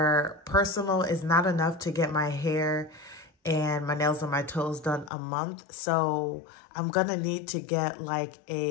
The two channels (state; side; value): drops out; right; at 5.1 s